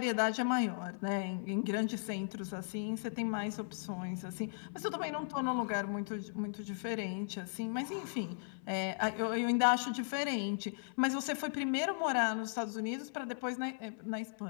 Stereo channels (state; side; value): silent; right; 53 dB below the other